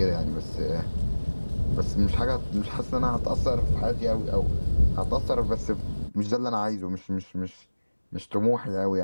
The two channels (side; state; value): both; inverted; correlation -1.00